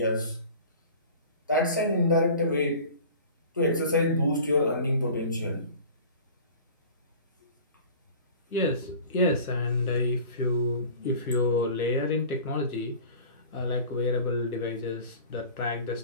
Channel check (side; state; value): both; inverted; correlation -0.41